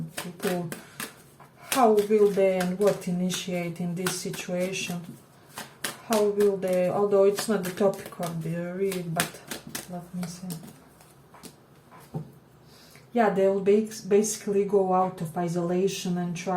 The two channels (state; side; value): identical; both; correlation 1.00